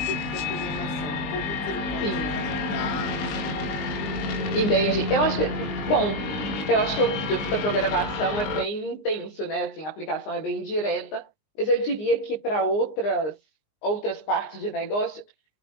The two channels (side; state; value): right; late; 20 ms